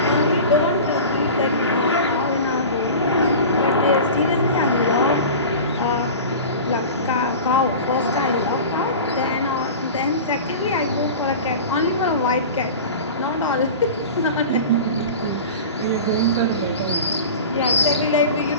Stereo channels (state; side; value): inverted; both; correlation -0.34